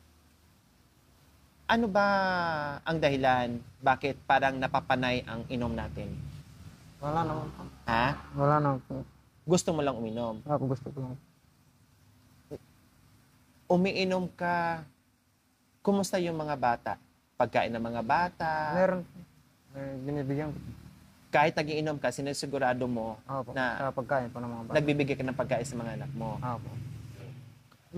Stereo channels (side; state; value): both; identical; correlation 1.00